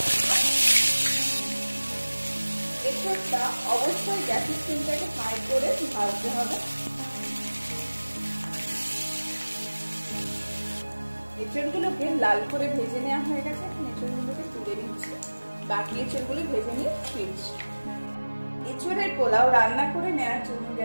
এঁচড়টা অবশ্যই গ্যাসের ফ্লেমটাকে হাই করে ভাজতে হবে। এঁচড়গুলোকে লাল করে ভেজে নেওয়া হয়ে গেছে। এখন এঁচড়গুলোকে তুলে নিচ্ছি, বাকি এঁচড়গুলো ভেজে নিয়ে ফিরছি। এঁচড়ের পোলাও রান্না করে নেওয়ার জন্য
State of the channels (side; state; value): both; inverted; correlation -1.00